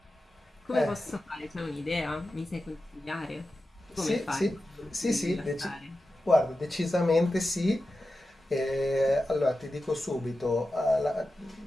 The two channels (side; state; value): both; normal; correlation 0.92